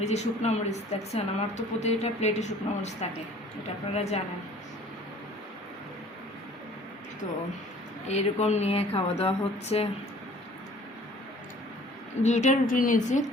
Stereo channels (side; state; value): both; normal; correlation 0.52